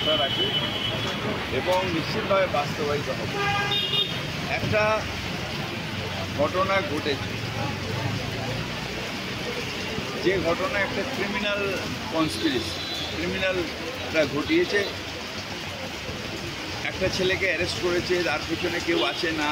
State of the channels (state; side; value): identical; both; correlation 1.00